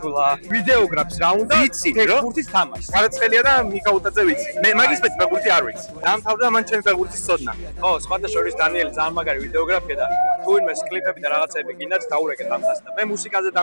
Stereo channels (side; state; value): both; inverted; correlation -1.00